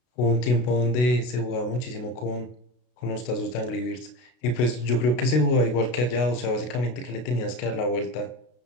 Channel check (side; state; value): right; late; 32 ms